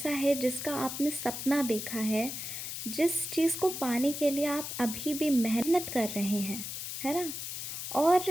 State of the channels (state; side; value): noise; left; hiss, 6 dB below the sound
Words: है जिसका आपने सपना देखा है, जिस चीज़ को पाने के लिए आप अभी भी मेहनत कर रहे हैं, है ना।